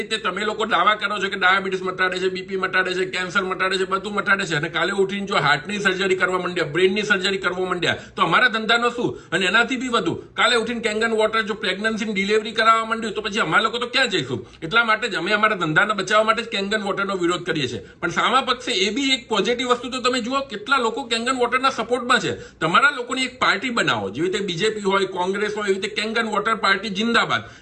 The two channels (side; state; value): both; identical; correlation 1.00